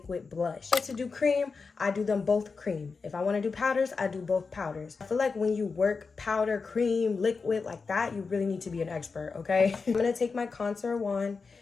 blush. To do cream, I do them both cream. If I want to do powders, I do both powders. I feel like when you work powder, cream, liquid like that, you really need to be an expert, okay? I'm going to take my contour wand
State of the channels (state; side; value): quieter; right; 4.7 dB